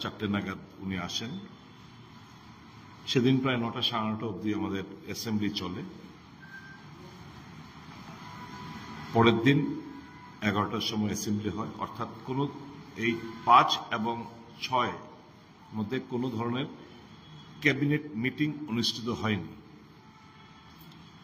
4টে নাগাদ উনি আসেন। সেদিন প্রায় 9টা সাড়ে 9টা অবধি আমাদের অ্যাসেম্বলি চলে। পরের দিন 11টার সময় অ্যাসেম্বলি হয়, অর্থাৎ কোনো এই 5 এবং 6 মধ্যে কোনো ধরনের ক্যাবিনেট মিটিং অনুষ্ঠিত হয়নি।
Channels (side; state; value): both; identical; correlation 1.00